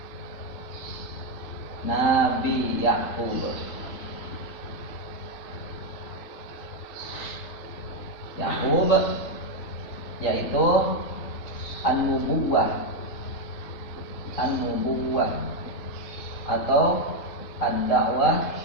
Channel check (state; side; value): late; right; 3.6 ms